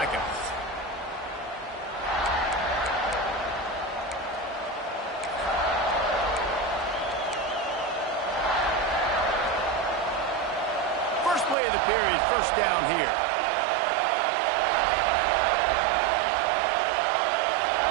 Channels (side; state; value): left; drops out; at 11.6 s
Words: First play of the period, first down here.